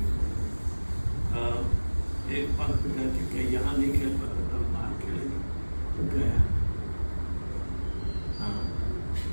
एक पंथ कहते कि यहाँ नहीं खेल पाते तो बाहर खेलेंगे, तो गया। हाँ,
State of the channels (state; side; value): inverted; both; correlation -1.00